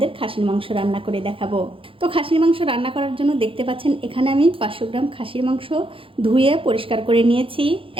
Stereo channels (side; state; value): left; late; 0.26 ms